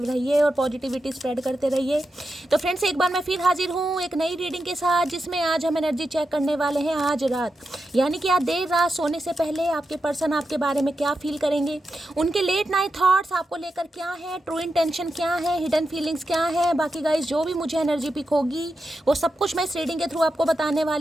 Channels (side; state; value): both; normal; correlation 0.88